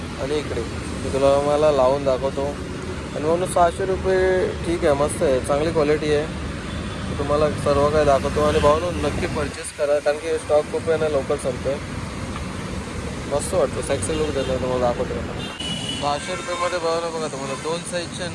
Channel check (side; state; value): both; identical; correlation 1.00